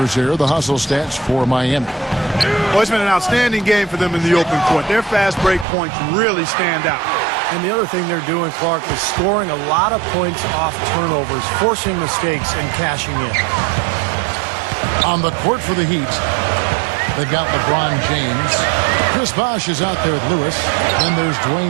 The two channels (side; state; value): left; drops out; at 5.7 s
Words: here, the hustle stats for Miami. Well, it's been an outstanding game for them in the open court. Their fast break points really stand out. And the other thing they're doing, Clark, is scoring a lot of points off turnovers, forcing mistakes, and cashing in. On the court for the Heat, they've got LeBron James. Chris Bosh is out there with Lewis. Then there's